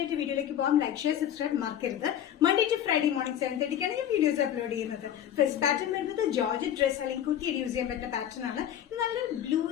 വീഡിയോയിലേക്ക് പോകാം. ലൈക്ക്, ഷെയർ, സബ്സ്ക്രൈബ് മറക്കരുത്. മൺഡേ ടു ഫ്രൈഡേ മോർണിംഗ് 7:30 ഞാൻ വീഡിയോസ് അപ്ലോഡ് ചെയ്യുന്നത്. ഫസ്റ്റ് പാറ്റേൺ വരുന്നത് ജോർജറ്റ് ഡ്രസ് അല്ലെങ്കിൽ കുത്തിയിട്ട് യൂസ് ചെയ്യാൻ പറ്റുന്ന പാറ്റേൺ ആണ്. ഇത് നല്ലൊരു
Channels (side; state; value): right; quieter; 10.3 dB